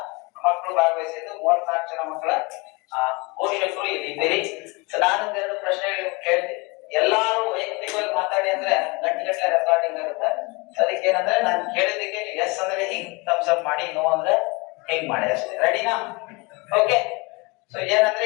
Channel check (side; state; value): right; quieter; 27.1 dB